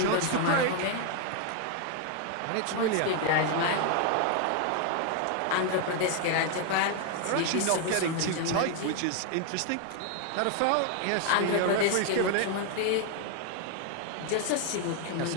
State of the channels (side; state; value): both; different; correlation 0.00